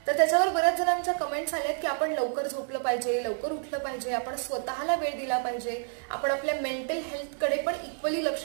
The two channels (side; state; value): left; silent; digital silence